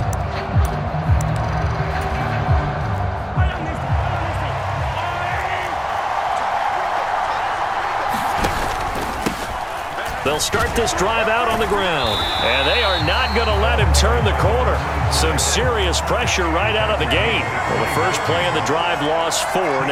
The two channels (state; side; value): identical; both; correlation 1.00